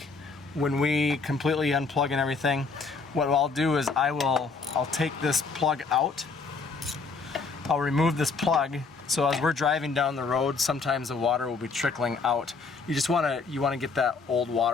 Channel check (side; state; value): right; quieter; 4.5 dB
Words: when we completely unplug and everything, what I'll do is I'll take this plug out. I'll remove this plug, so as we're driving down the road, sometimes the water will be trickling out. You want to get that old